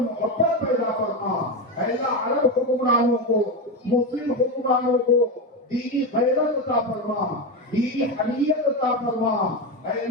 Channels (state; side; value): normal; both; correlation 0.14